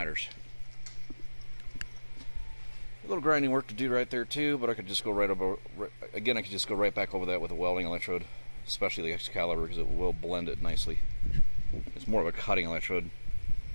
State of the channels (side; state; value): both; inverted; correlation -1.00